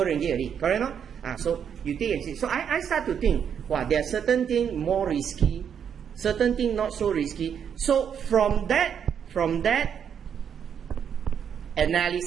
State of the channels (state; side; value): quieter; left; 8.0 dB